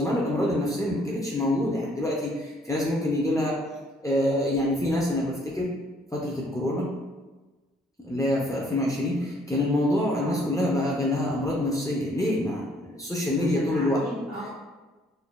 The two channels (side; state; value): both; normal; correlation 0.64